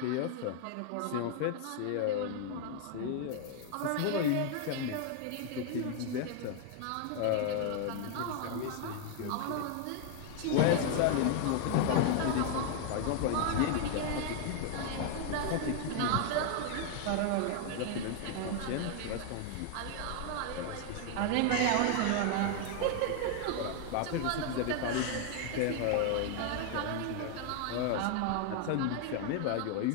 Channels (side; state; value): both; different; correlation 0.00